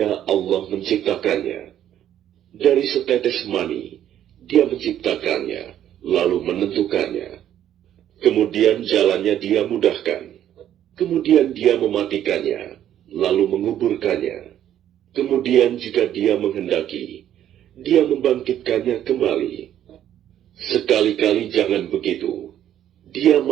Allah menciptakannya? Dari setetes mani dia menciptakannya, lalu menentukannya. Kemudian jalannya dia mudahkan. Kemudian dia mematikannya, lalu menguburkannya. Kemudian jika dia menghendaki, dia membangkitkannya kembali. Sekali-kali jangan begitu. Dia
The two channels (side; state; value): left; quieter; 11.0 dB